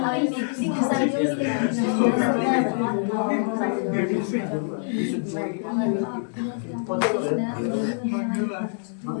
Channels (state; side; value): silent; right; 62 dB below the other